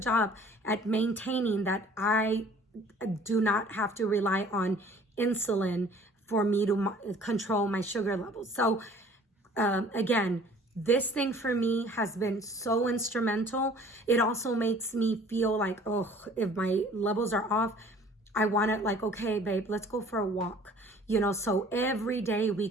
job at maintaining that I do not have to rely on insulin for me to control my sugar levels. So again, This thing for me has been so instrumental. It also makes me feel like, oh, if my levels are off, I want to like, okay, babe, let's go for a walk. You know, so every day we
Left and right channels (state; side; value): normal; both; correlation 0.51